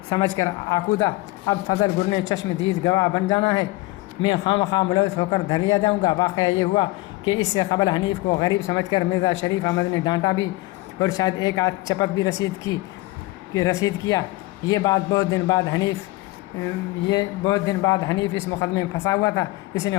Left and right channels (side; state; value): right; quieter; 20.2 dB